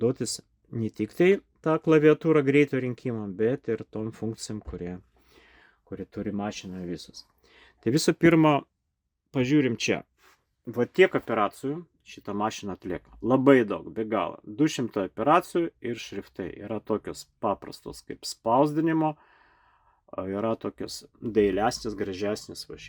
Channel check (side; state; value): both; identical; correlation 1.00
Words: ne tik tai tą klaviatūrą greito rinkimą, bet ir tom funkcijom, kurie turi mašina visus. Tai visų pirma, pažiūrim čia. Tiek operacijų šitą mašiną atlieka. Labai daug, be galo. 200 operacijų ir šriftai. Yra tokios paprastos kaip spausdinimo, yra tokios dailesnės, gražesnės